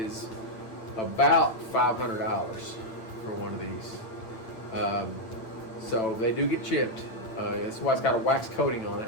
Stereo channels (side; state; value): right; late; 8.9 ms